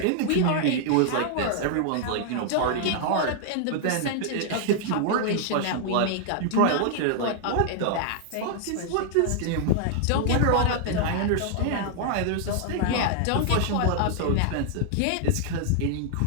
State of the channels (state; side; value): different; both; correlation 0.00